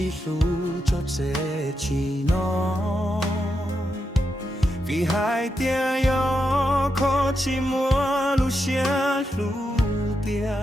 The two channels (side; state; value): both; normal; correlation 0.85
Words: 路做这起喏，比海边有可寂寞路线路边，